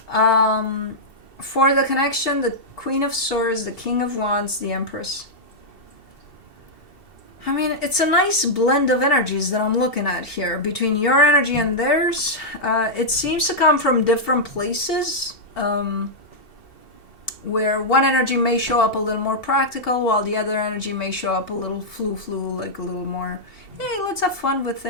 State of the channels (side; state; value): right; late; 2.7 ms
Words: For the connection, the Queen of Swords, the King of Wands, the Empress. I mean, it's a nice blend of energies that I'm looking at here between your energy and theirs. It seems to come from different places, where one energy may show up a little more practical, while the other energy may show up a little flu, like a little more, hey, let's have fun with